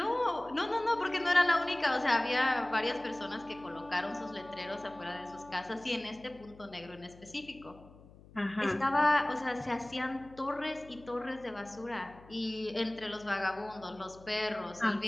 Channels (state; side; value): noise; left; hum, 22 dB below the sound